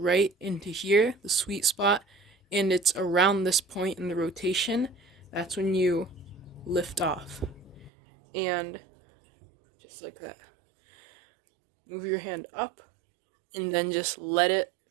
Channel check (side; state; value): left; drops out; at 7.9 s